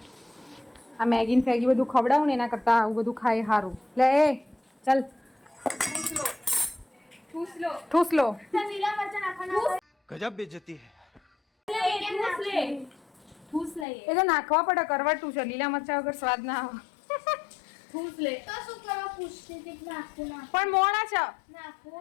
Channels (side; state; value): right; drops out; at 13.9 s